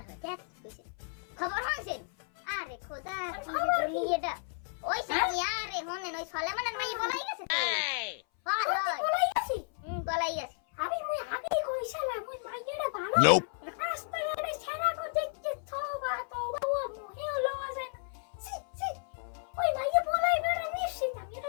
হয় দেখ কইছে খবর হইছেন আরে খোদা কি যে দুনিয়াটা ওই সাথী আরে হনেন ওই সলেমানের মাই বলাই গেছে তো হয় হয় বলাই গেছি বলাই গেছে আমি আগে কইছিলাম ওই মাইয়াটা ভালো Nope. রাস্তাঘাটে ছেড়া কো দেখতে তওবা তওবা ও মুহে লওয়া যায় না সি সি ওই মাইয়া বলাইবে না নিশ্চিত আমি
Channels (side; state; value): right; silent; 56 dB below the other